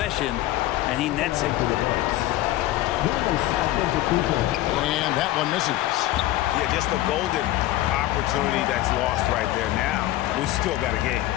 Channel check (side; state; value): right; quieter; 15.6 dB